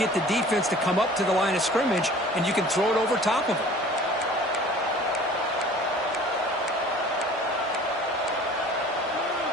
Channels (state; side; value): normal; both; correlation 0.47